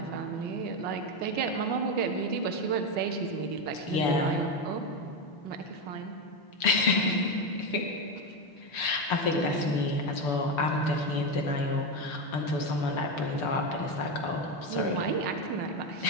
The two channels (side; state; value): right; late; 6.9 ms